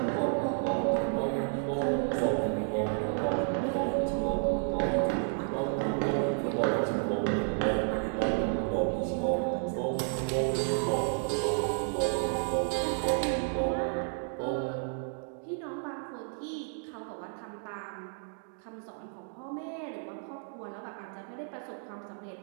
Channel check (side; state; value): left; silent; 57 dB below the other